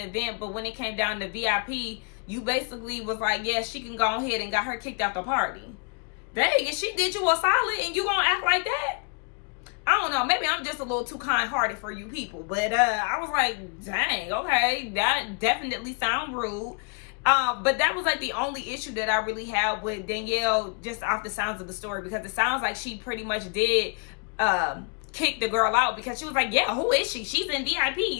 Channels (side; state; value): right; quieter; 37.1 dB